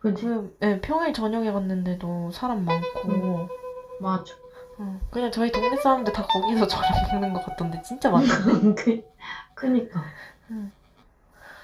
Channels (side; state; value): both; identical; correlation 1.00